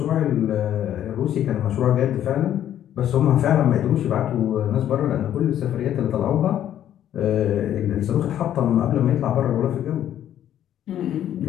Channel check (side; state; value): right; quieter; 11.0 dB